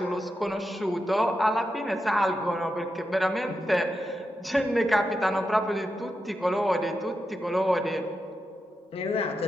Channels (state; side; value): normal; both; correlation 0.87